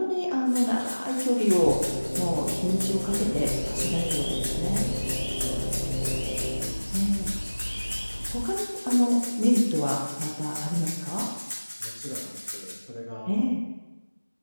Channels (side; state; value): both; inverted; correlation -1.00